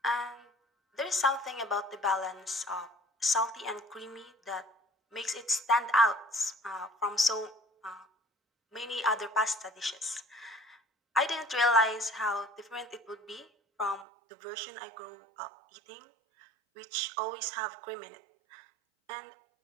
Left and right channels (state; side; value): drops out; left; at 14.1 s